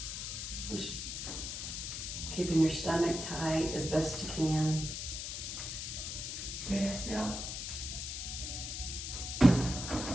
Just keeping your stomach tight as best you can. Yes, yeah.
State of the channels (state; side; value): noise; left; hiss, 5 dB below the sound